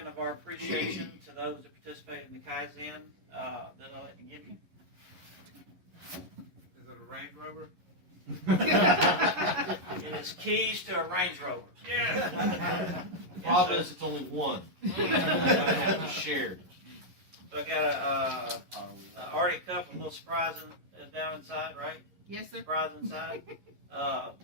of our appreciation to those that participated in the Kaizen that I'd like to give you. Is it a Range Rover? It is keys to a Range Rover. Yeah. The problem is it's only one. We're going to have to share. So I got a Arctic cup, a little surprise down inside, right? Yes, sir. Surprise inside.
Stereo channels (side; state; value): left; late; 11 ms